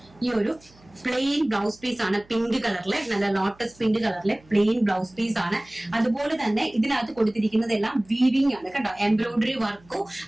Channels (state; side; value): noise; right; hum, 28 dB below the sound